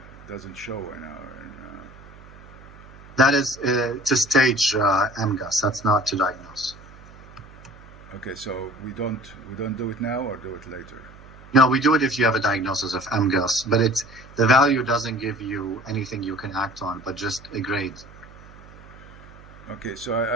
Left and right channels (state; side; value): noise; right; hum, 20 dB below the sound